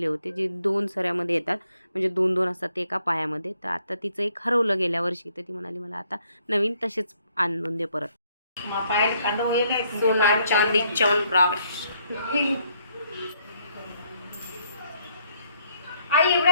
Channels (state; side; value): inverted; both; correlation -0.70